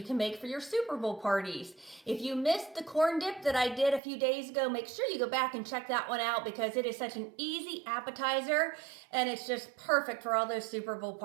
can make for your Super Bowl parties. If you missed the corn dip that I did a few days ago, make sure you go back and check that one out because it is such an easy appetizer and it's just perfect for all those Super Bowl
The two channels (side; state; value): left; drops out; at 4.0 s